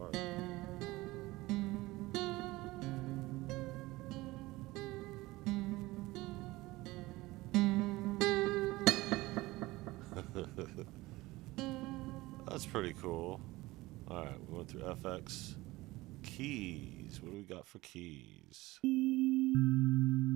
That's pretty cool. Alright, we went through FX. Keys. What do we got for keys?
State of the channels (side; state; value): left; quieter; 19.7 dB